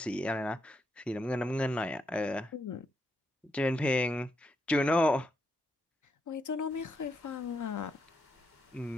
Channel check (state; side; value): normal; both; correlation 0.80